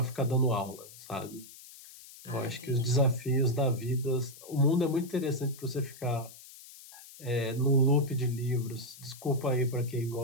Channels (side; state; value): left; noise; hiss, 18 dB below the sound